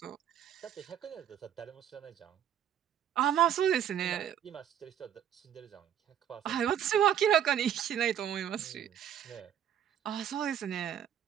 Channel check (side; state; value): left; quieter; 9.8 dB